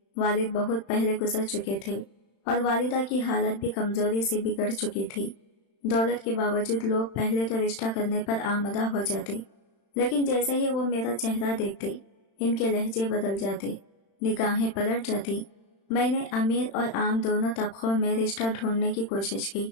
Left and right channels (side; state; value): right; late; 35 ms